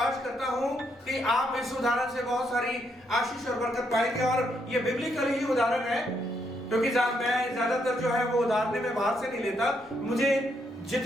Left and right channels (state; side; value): normal; both; correlation 0.76